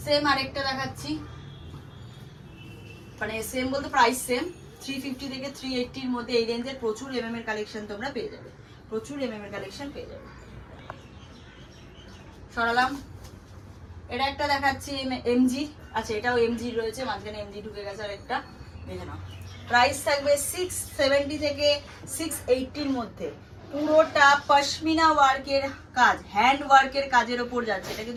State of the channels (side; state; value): both; identical; correlation 1.00